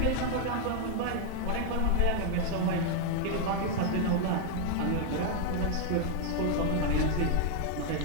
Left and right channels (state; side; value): different; both; correlation 0.00